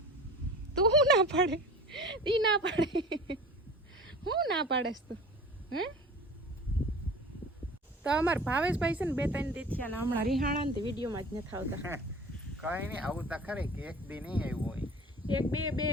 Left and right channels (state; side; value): normal; both; correlation 0.39